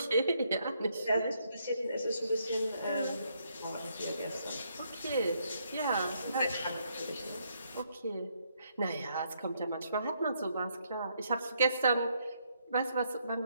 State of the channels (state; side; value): inverted; both; correlation -0.74